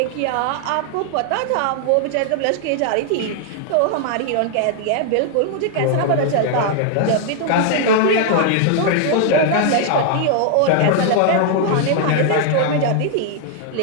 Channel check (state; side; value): different; both; correlation 0.00